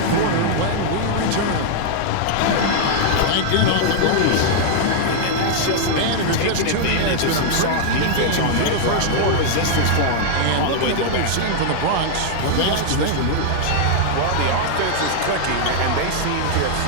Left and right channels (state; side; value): different; both; correlation -0.01